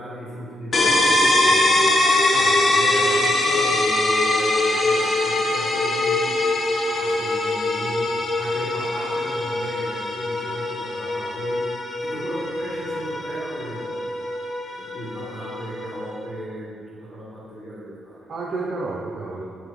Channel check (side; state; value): both; normal; correlation 0.80